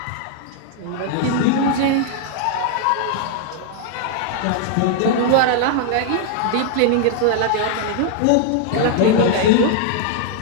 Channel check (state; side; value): different; both; correlation 0.00